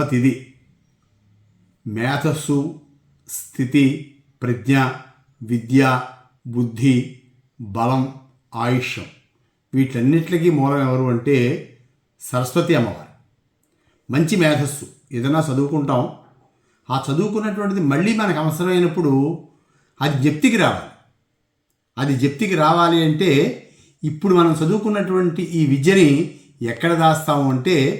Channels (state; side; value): identical; both; correlation 1.00